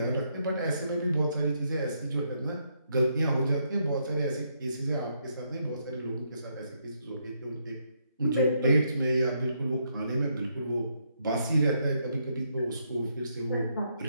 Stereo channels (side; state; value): both; inverted; correlation -0.76